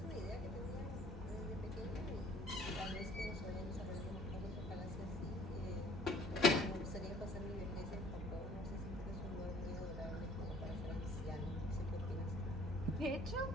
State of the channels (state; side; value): normal; both; correlation 0.54